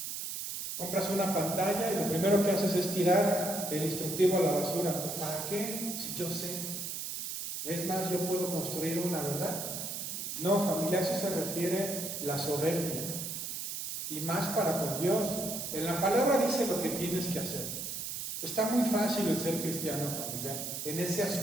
Compras una pantalla y lo primero que haces es tirar el instructivo a la basura. Pues ¿para qué? Si yo sé. Es más, yo puedo construir una, ¿verdad? No, familia, a eso se refiere la soberbia. Y más para con Dios. En la palabra dice lo que tienes que hacer. Está muy fácil el ser cristiano, familia, en ese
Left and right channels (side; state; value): right; noise; hiss, 5 dB below the sound